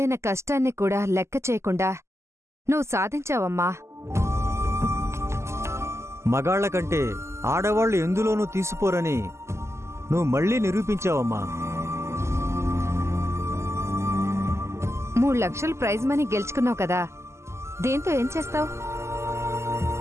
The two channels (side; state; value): left; late; 0.13 ms